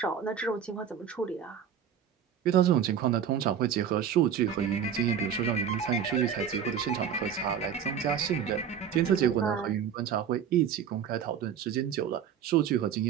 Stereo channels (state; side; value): quieter; left; 8.2 dB